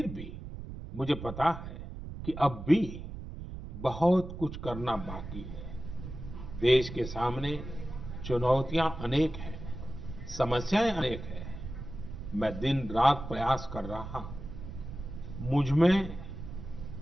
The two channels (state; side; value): noise; right; rumble, 10 dB below the sound